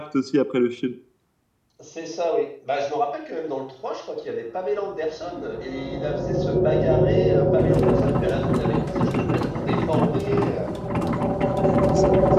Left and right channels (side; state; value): both; identical; correlation 1.00